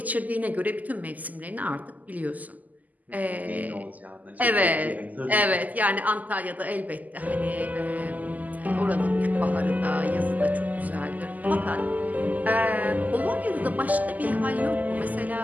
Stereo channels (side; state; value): left; late; 0.079 ms